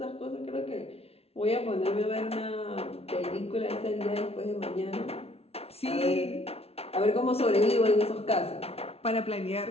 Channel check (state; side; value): late; right; 0.30 ms